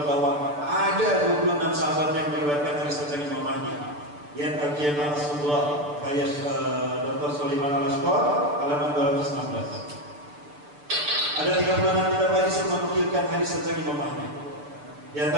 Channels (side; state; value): left; late; 6.8 ms